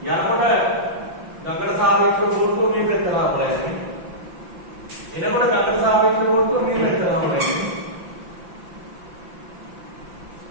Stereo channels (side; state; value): left; late; 5.8 ms